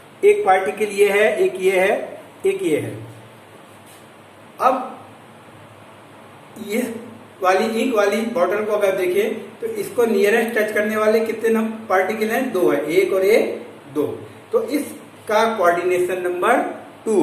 एक पार्टिकल ये है, एक ये है, एक ये है। अब ये वाली इंक वाली बॉटल को अगर देखें तो इसको नियरेस्ट टच करने वाले कितने पार्टिकल हैं? 2 है, एक और एक 2। तो इसका कोऑर्डिनेशन नंबर 2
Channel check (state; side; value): identical; both; correlation 1.00